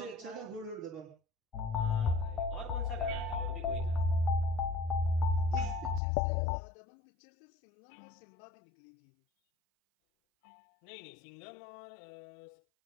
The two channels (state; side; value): drops out; right; at 6.0 s